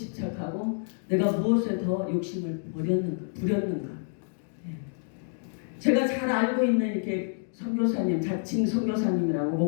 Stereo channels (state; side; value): silent; right; digital silence